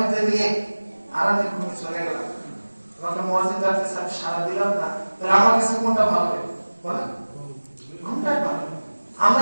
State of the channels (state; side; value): inverted; both; correlation -1.00